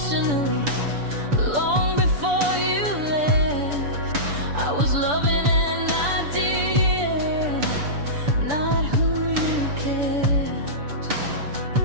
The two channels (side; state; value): left; late; 6.9 ms